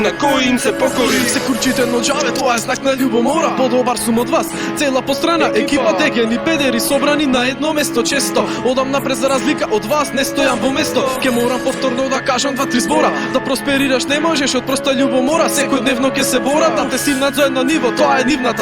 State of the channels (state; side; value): identical; both; correlation 1.00